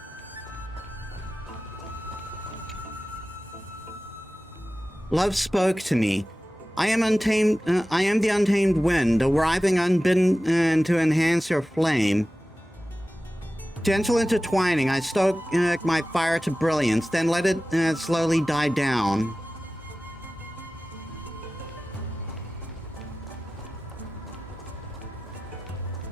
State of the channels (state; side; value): normal; both; correlation 0.96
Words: Love spoke to me. I am untamed. I am the untamed wind, arriving unbidden to enhance your flame. Gentle intertwining, I stoke my fire to brilliance, then let it slowly die down.